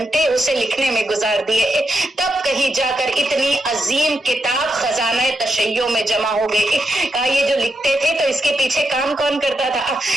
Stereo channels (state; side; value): normal; both; correlation 0.85